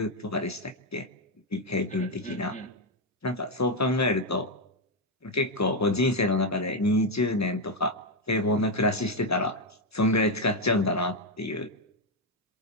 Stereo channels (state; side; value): normal; both; correlation 0.03